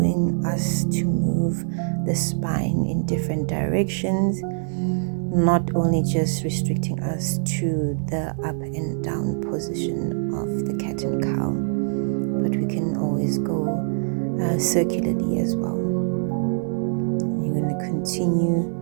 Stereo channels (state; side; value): silent; left; digital silence